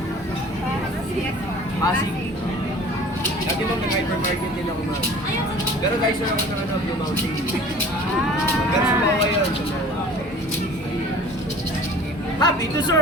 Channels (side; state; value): both; normal; correlation 0.45